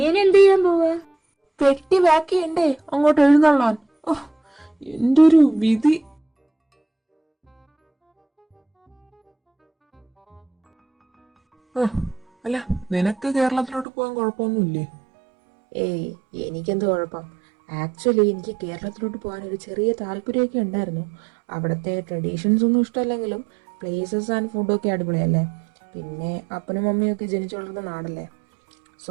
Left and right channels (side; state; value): left; drops out; at 13.9 s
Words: ഇനി എന്ത് ചെയ്യാൻ പോവാ? പെട്ടി പാക്ക് ചെയ്യണ്ടേ അങ്ങോട്ട് എഴുന്നള്ളാൻ. എന്റെ ഒരു വിധി. അല്ല, നിനക്ക് കേരളത്തിലോട്ട് പോകാൻ കുഴപ്പമൊന്നുമില്ലേ? ഏയ്, എനിക്കെന്ത് കുഴപ്പം. ആക്ച്വലി എനിക്ക് കേരളത്തിലോട്ട് പോകാൻ ഒരു ചെറിയ താല്പര്യമൊക്കെ ഉണ്ടായിരുന്നു. അവിടുത്തെ ട്രഡീഷൻസ് ഒന്നും ഇഷ്ടമല്ലെങ്കിലും പ്ലേസസ് ആൻഡ് ഫുഡൊക്കെ അടിപൊളിയല്ലേ. പിന്നെ അപ്പനും മമ്മിയൊക്കെ ജനിച്ചു വളർന്ന നാടല്ലേ.